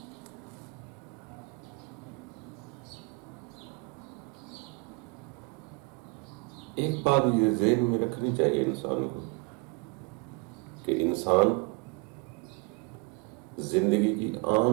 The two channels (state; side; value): quieter; left; 30.2 dB